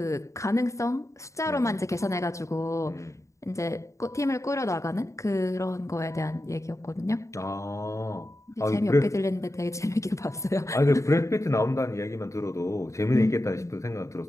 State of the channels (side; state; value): right; late; 0.15 ms